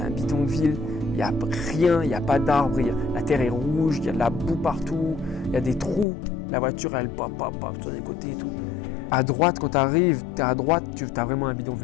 bidonville, il n'y a rien, il n'y a pas d'arbres, la terre est rouge, il y a de la boue partout, il y a des trous. La voiture, elle pop sur les côtés et tout. À droite, quand tu arrives, tu es à droite, tu as vraiment un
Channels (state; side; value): drops out; right; at 6.1 s